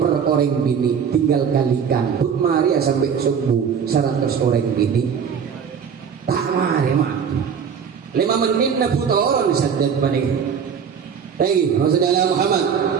orang bini tinggal kalikan. Buk Maria sampai subuh 100 orang bini. Tak mari mah. 5 menit na buta orang syadat panik. Lagi, Rasulullah Muhammad.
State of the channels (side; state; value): left; quieter; 7.1 dB